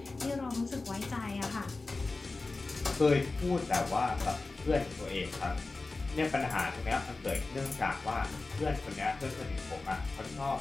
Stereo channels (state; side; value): quieter; right; 3.5 dB